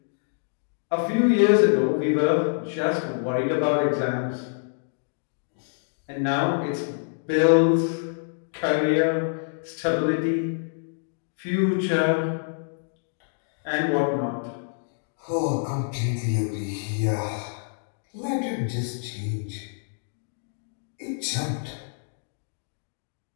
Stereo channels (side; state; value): right; silent; digital silence